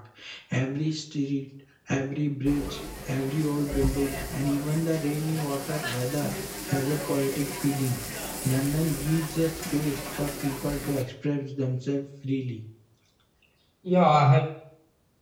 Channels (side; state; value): both; identical; correlation 1.00